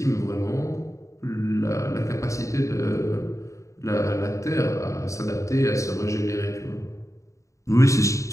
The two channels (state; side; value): late; right; 0.15 ms